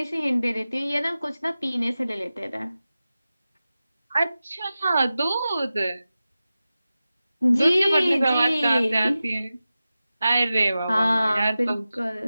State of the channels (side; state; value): both; inverted; correlation -0.95